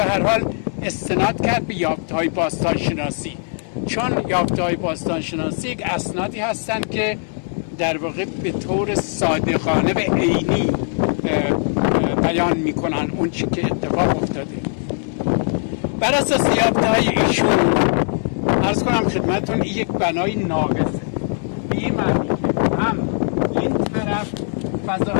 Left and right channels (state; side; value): silent; right; 55 dB below the other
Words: هر حال استناد کرد به یافته های باستانشناسی، چون یافته های باستانشناسی یک اسنادی هستن که در واقع به طور صادقانه به عینی بیان میکنن اون چی که اتفاق افتاده. بر اساس یافته‌های ایشون عرض کنم خدمتتون یک بنای ناقصه، به این معنی که هم این طرف